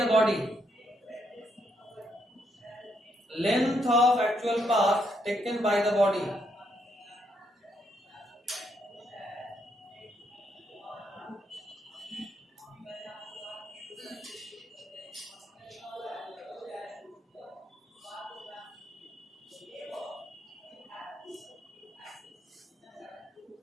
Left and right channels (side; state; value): both; normal; correlation 0.76